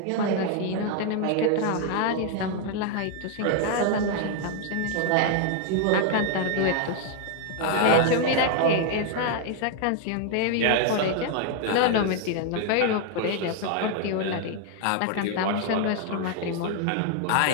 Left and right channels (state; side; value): different; both; correlation 0.00